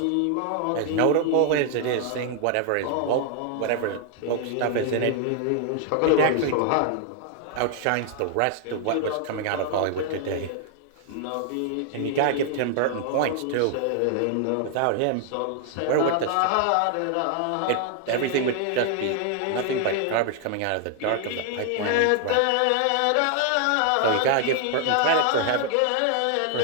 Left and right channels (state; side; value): different; both; correlation 0.00